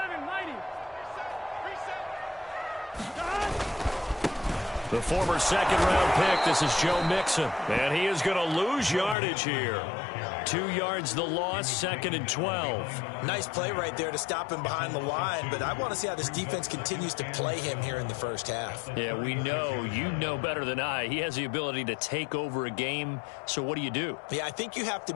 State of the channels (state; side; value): drops out; right; at 9.2 s